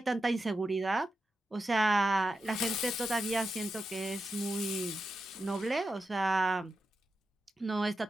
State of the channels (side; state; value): both; normal; correlation 0.89